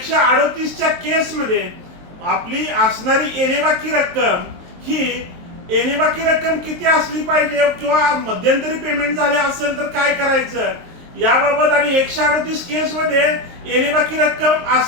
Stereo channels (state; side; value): late; left; 23 ms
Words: केसमध्ये आपली असणारी येणेबाकी रक्कम ही येणेबाकी रक्कम किती असली पाहिजे किंवा मध्यंतरी पेमेंट झाले असेल तर काय करायचं याबाबत आणि 138 केसमध्ये येणेबाकी रक्कम